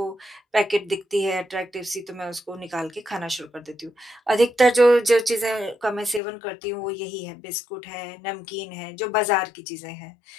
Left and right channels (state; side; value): drops out; right; at 6.2 s